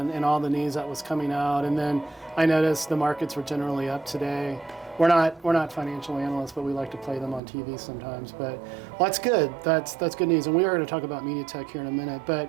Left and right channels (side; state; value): left; drops out; at 7.4 s